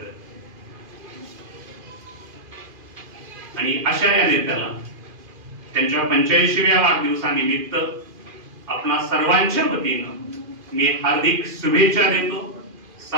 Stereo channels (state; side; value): late; left; 2.5 ms